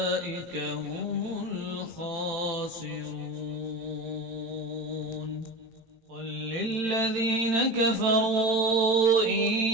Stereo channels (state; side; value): late; left; 18 ms